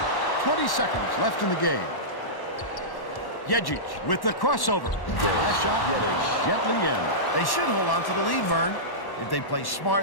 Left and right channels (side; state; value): right; late; 1.1 ms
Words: 20 seconds left in the game. Jejic with the crossover. The last shot lays gently in. They should hold on to the lead, Vern. If they play